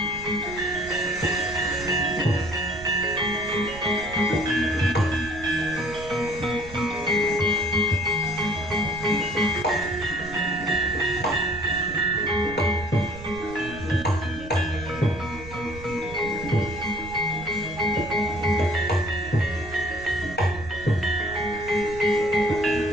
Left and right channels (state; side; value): noise; right; rumble, 14 dB below the sound